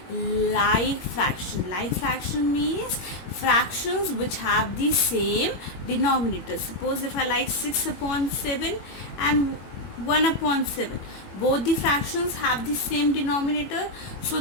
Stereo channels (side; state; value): right; late; 21 ms